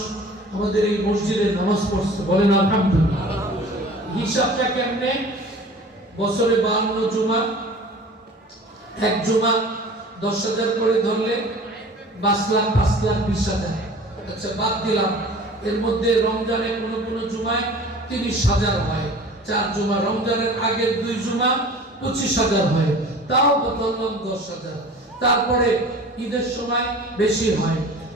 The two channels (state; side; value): normal; both; correlation 0.43